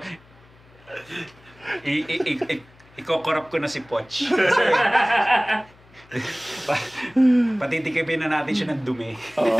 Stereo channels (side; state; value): left; noise; hum, 27 dB below the sound